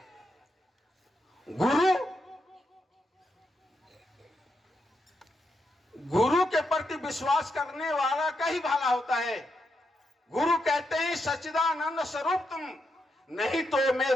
गुरु के प्रति विश्वास करने वाला का ही भला होता है। गुरु कहते हैं, सच्चिदानंद स्वरूप तुम, नहीं तो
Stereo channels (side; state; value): both; normal; correlation 0.83